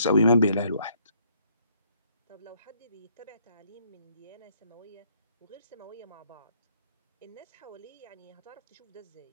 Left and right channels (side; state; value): both; inverted; correlation -0.68